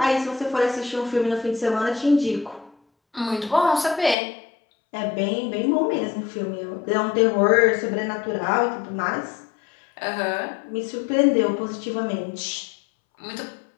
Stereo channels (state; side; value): drops out; right; at 4.2 s